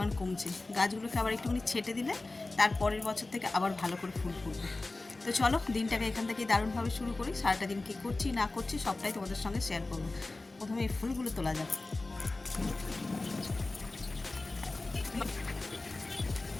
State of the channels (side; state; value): right; quieter; 3.2 dB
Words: কমছে। গাছগুলোকে আবার একটুখানি ছেটে দিলে তার পরের বছর থেকে আবার ভালো করে ফুল ফুটবে। তো চলো দিনটাকে এখান থেকে দারুণভাবে শুরু করি। সারাটা দিন কী করছি না করছি সবটাই তোমাদের সঙ্গে শেয়ার করবো। প্রথমে এই ফুলগুলো তোলা যাক।